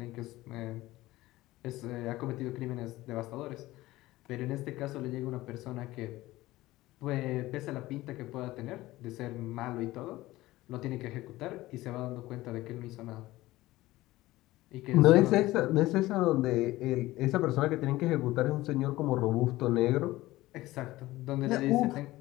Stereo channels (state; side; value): quieter; right; 17.7 dB